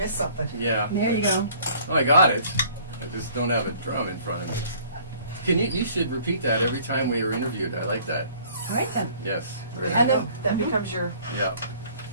something. Yeah. There you go. Oh, I got it. I just don't have a drum in front of me. Can you should repeat that every time we are interviewed. I like that. All right then. Yes. There you And go. then- That becomes your. Yeah.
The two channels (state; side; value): inverted; both; correlation -0.54